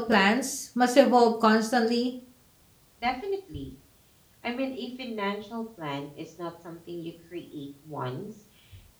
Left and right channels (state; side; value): identical; both; correlation 1.00